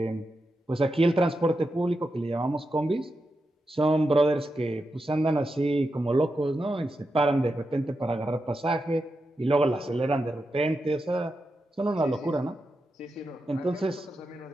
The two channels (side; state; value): both; normal; correlation 0.88